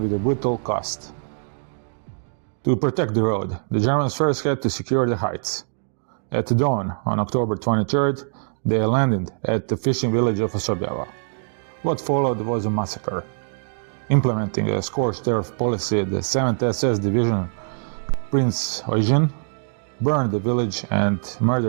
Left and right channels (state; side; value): silent; left; digital silence